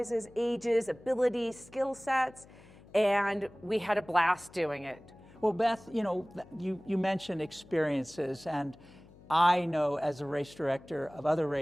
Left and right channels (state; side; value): noise; left; hum, 23 dB below the sound